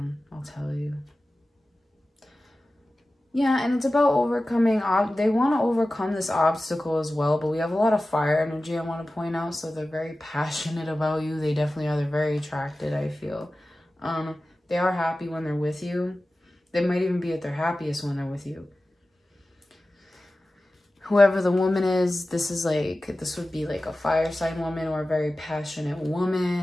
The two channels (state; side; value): normal; both; correlation 0.96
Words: I'll tell you. Yeah, and it's about overcoming, they want to overcome this obstacle as well, but we have a lot of fire energy, I want to point out, so they're very passionate about you. They definitely are. They're very attracted, I feel. They are happy when they're with you. They might even be at their happiest when they're with you. Whoever the woman is, this would be like a fire sign woman or a very passionate